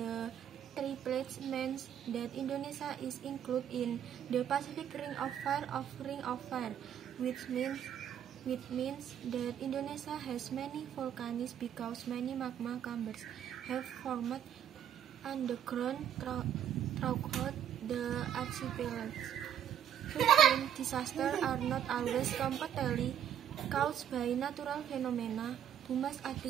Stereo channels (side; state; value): left; quieter; 9.8 dB